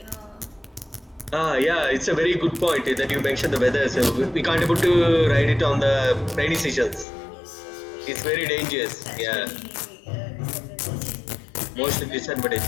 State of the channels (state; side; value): drops out; right; at 7.1 s